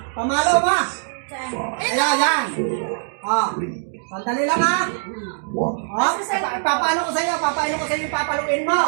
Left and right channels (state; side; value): silent; left; digital silence